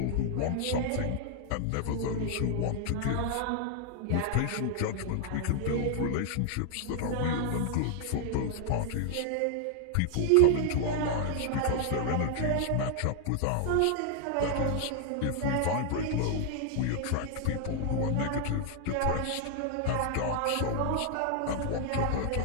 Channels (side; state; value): both; different; correlation 0.00